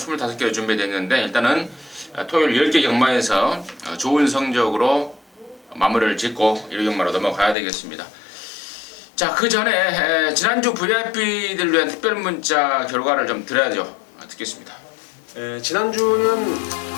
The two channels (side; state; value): right; drops out; at 7.6 s